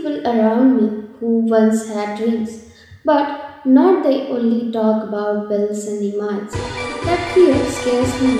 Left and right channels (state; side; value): identical; both; correlation 1.00